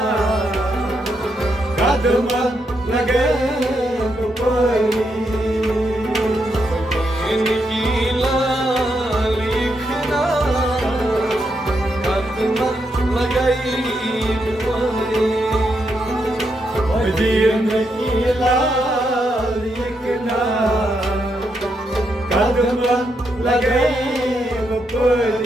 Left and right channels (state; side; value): normal; both; correlation 0.81